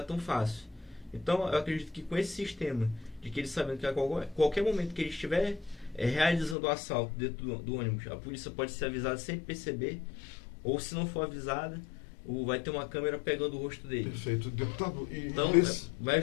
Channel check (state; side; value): drops out; right; at 6.6 s